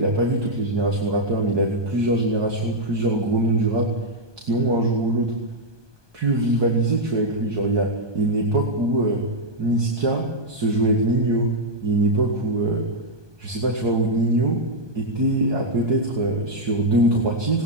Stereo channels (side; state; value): left; late; 1.2 ms